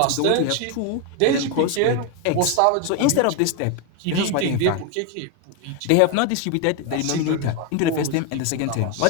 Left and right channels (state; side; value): different; both; correlation 0.01